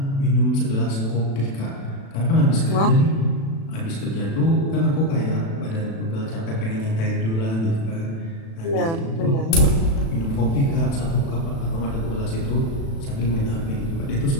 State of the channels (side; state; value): right; late; 36 ms